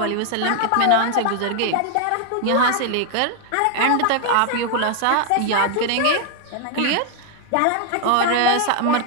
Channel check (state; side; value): different; both; correlation 0.00